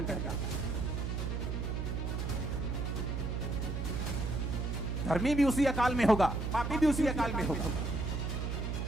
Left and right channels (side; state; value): right; noise; hum, 2 dB below the sound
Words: कहता है। धर्मी भी उसी अकाल में होगा, पापी भी उसी अकाल में होगा।